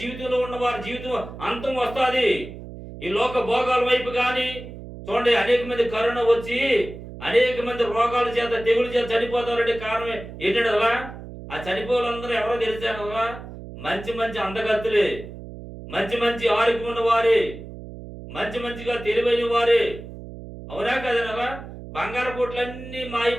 జీవితంలో ఉన్న వారి జీవితం అంతం వస్తుంది. ఈ లోక భోగాల వైపు కానీ చూడండి అనేక మంది కరోనా వచ్చి అనేక మంది రోగాల చేత తెగుల చేత చనిపోతారంటే కారణం ఏంటంటే అలా ఆ చనిపోవాలందరూ ఎవరో తెలిసాను అలా మంచి మంచి అందగత్తులే, మంచి మంచి ఆరోగ్యం ఉన్న వారే, మంచిగా తెలివైన వారే, అవునా కదనలా? బంగారు కోట్లన్నీ మాయి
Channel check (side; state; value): right; noise; hum, 13 dB below the sound